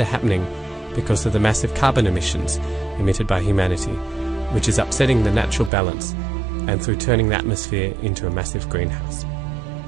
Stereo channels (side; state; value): left; drops out; at 5.7 s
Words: are happening because of the massive carbon emissions emitted by humanity, which is upsetting the natural balance and through turning the atmosphere into a massive greenhouse.